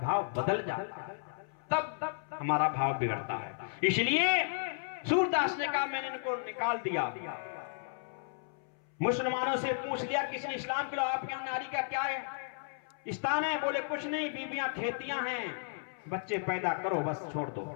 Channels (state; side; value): silent; right; 55 dB below the other